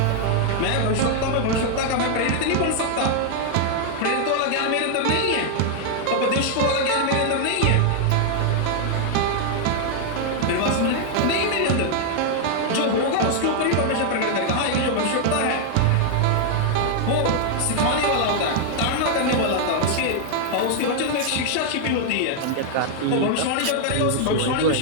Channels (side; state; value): both; different; correlation 0.00